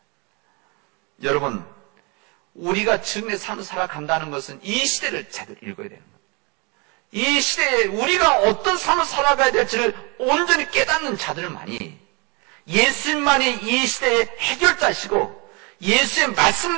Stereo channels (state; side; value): quieter; left; 30.0 dB